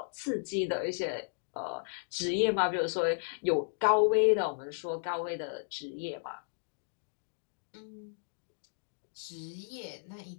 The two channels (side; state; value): right; silent; digital silence